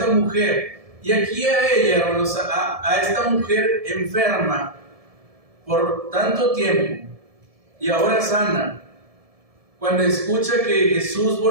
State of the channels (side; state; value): left; late; 1.7 ms